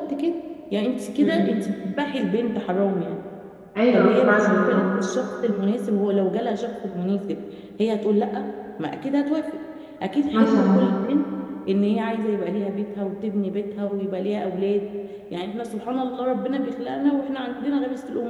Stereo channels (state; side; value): identical; both; correlation 1.00